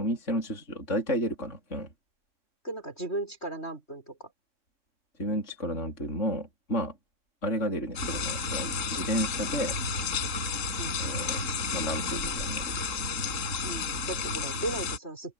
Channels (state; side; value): late; right; 3.7 ms